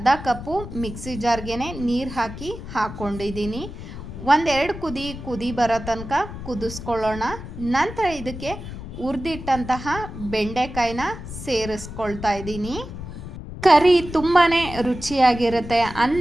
ಕಪ್ಪು ಮಿಕ್ಸಿ ಜಾರ್ಗೆ ನೀರು ಹಾಕಿ ಹಾಕ್ಕೊಂಡಿದ್ದೀನಿ. 1-2 ಕುದಿ ಬರೋ ತನಕ ಕುದಿಸ್ಕೊಳ್ಳೋಣ. ನಂತರ ಇದಕ್ಕೆ ಹುರಿದಿಟ್ಟಂತಹ ಬೆಂಡೆಕಾಯಿನ ಸೇರಿಸ್ಕೊಳ್ತಾ ಇದ್ದೀನಿ. ಕರಿ ತುಂಬಾ ರುಚಿಯಾಗಿರುತ್ತೆ.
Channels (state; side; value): noise; left; rumble, 10 dB below the sound